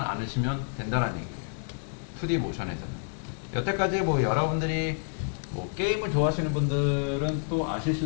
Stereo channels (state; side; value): silent; right; digital silence